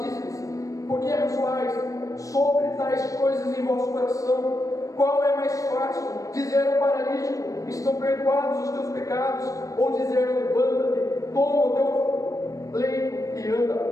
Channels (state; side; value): late; right; 0.16 ms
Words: por que arrazoais sobre tais coisas em vosso coração? Qual é mais fácil, dizer ao paralítico: estão perdoados os teus pecados, ou dizer: levanta-te, toma o teu leito e